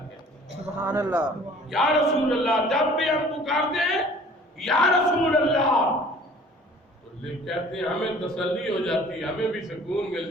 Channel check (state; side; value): normal; both; correlation 0.50